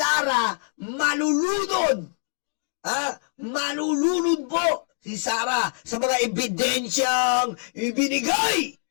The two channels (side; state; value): right; silent; digital silence